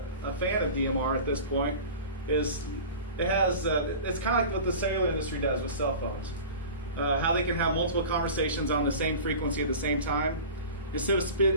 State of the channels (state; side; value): inverted; both; correlation -0.36